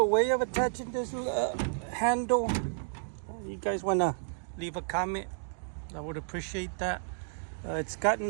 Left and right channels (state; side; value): silent; left; digital silence